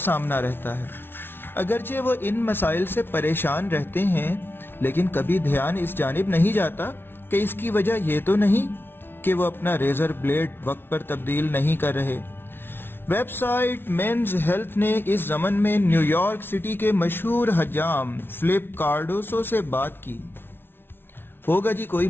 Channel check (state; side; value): late; right; 0.11 ms